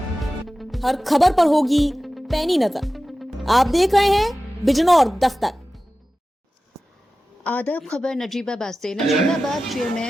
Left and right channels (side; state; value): both; normal; correlation 0.95